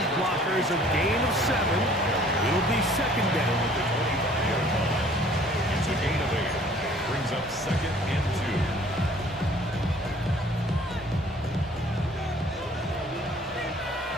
blockers. A gain of 7. It'll be second down. It's a gain of 8. Brings up second and 2.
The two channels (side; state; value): both; normal; correlation 0.54